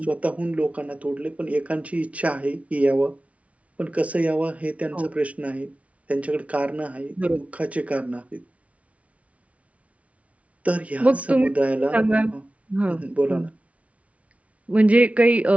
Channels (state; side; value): late; left; 0.065 ms